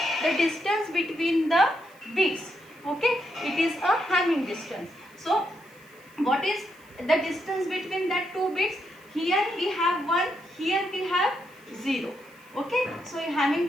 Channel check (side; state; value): right; noise; hiss, 28 dB below the sound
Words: The distance between the bits. Okay, it is a Hamming distance. So what is the distance between that 2 bits? Here we have 1, here we have 0. Okay, so Hamming